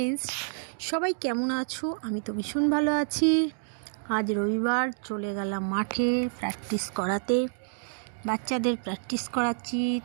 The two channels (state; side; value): silent; left; digital silence